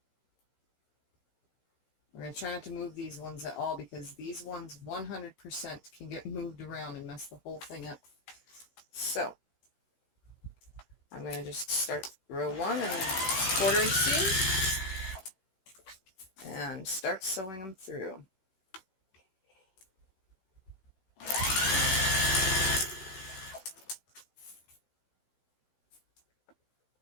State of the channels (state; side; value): late; right; 16 ms